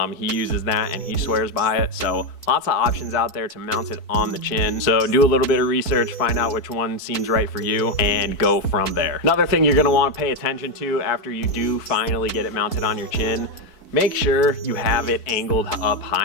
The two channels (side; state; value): right; late; 4.5 ms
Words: he uses that and he swears by it. So lots of options out there to mount it on the chin. So do a little bit of research, find out which one seems right for you, and go from there. Another thing you're gonna wanna pay attention to after you do finally get it mounted on your chin, make sure you have it angled up